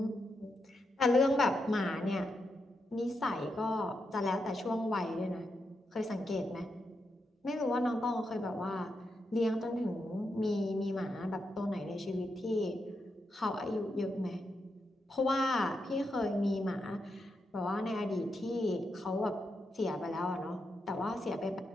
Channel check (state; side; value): normal; both; correlation 0.84